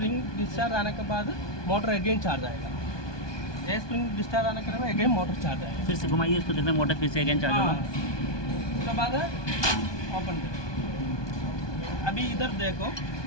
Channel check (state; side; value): late; right; 1.2 ms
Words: डिस्चार्ज आने के बाद मोटर अगेन चार्ज आएगा। ये स्प्रिंग डिस्चार्ज आने के बाद अगेन मोटर चार्ज आएगा। फिर से घुमाइए इसको, देखना मोटर फिर से अगेन चार्ज होगा। उसके बाद ओपन करें। अभी इधर देखो,